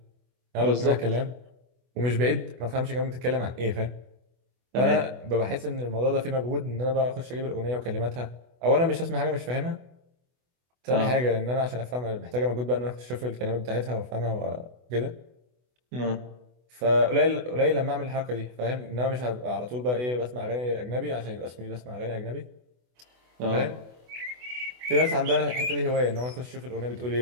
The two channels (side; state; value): left; late; 24 ms